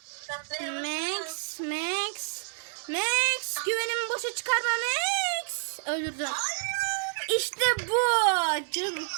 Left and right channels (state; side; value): silent; left; digital silence